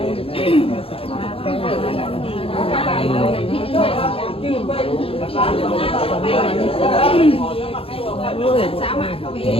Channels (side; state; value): right; late; 0.27 ms